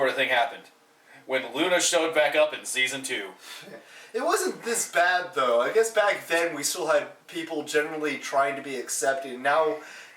of thing happened. When Luna showed back up in season 2. It wasn't this bad though. I guess back then we still had people generally trying to be accepting. Now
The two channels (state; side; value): identical; both; correlation 1.00